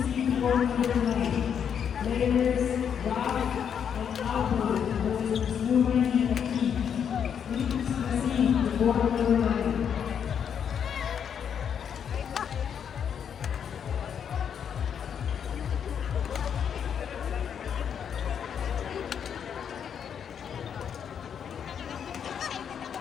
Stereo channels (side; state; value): right; quieter; 8.0 dB